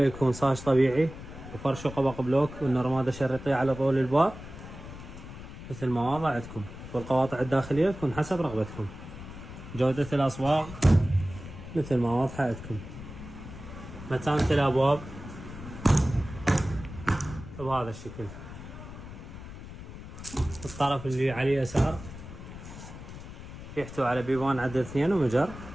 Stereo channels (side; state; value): left; noise; rumble, 13 dB below the sound